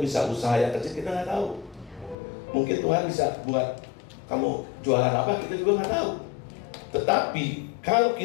usaha yang kecil, kita nggak tahu. Mungkin Tuhan bisa buat kamu jualan apa, kita juga nggak tahu. Tetapi kalau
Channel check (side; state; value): right; drops out; at 2.1 s